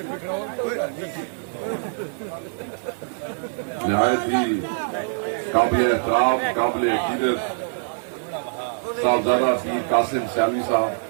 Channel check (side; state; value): left; silent; digital silence